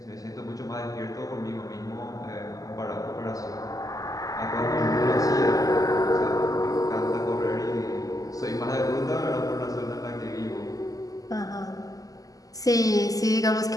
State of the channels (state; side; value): late; right; 0.17 ms